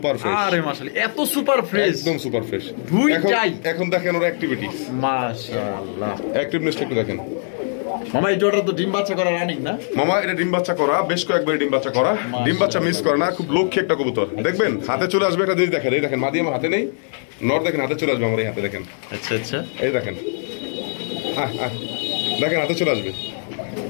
ফ্রেশ। আরে মাশাআল্লাহ এত সুপার ফ্রেশ, একদম সুপার ফ্রেশ। এখন দেখেন ওর অ্যাক্টিভিটিস মাশাআল্লাহ, অ্যাক্টিভনেসটা একটু দেখেন মামা। এই জোড়া তো ডিম বাচ্চা করা রানিং না মামা? এটা ডিম বাচ্চা করা, বেশ কয়েকবার ডিম বাচ্চা করা, ডিম বাচ্চা মিস করে না, খুব লক্ষ্যে একটা কবুতর। দেখবেন হাতে চলে আসবে একটা জিনিস, দেখেন এই দেখেন মাদি আমার হাতে নেই, নর দেখেন হাতে চলে আসবে আমার এই হাতে, দেখেন আচ্ছা আচ্ছা এই দেখেন দেখেন হাতে চলে আসবে,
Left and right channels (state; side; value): silent; right; digital silence